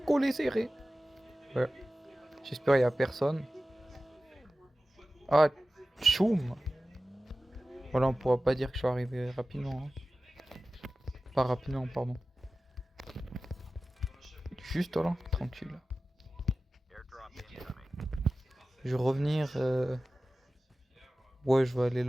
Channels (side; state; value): both; normal; correlation 0.96